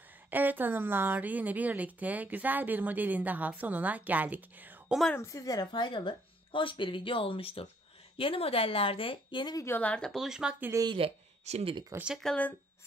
Evet hanımlar, yine birlikte güzel bir modelin daha sonuna geldik. Umarım sizlere faydalı, hoş bir video olmuştur. Yeni modellerde, yeni videolarda buluşmak dileğiyle. Şimdilik hoşça kalın,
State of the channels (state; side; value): normal; both; correlation 0.66